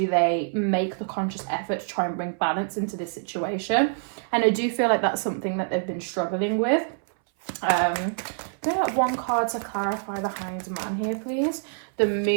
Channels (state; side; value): silent; left; 61 dB below the other